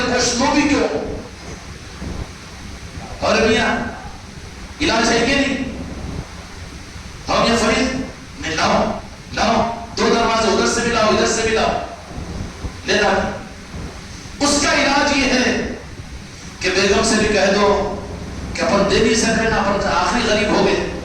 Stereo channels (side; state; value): both; identical; correlation 1.00